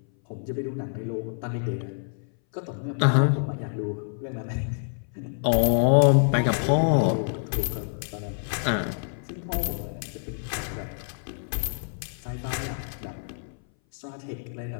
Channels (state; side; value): silent; right; 58 dB below the other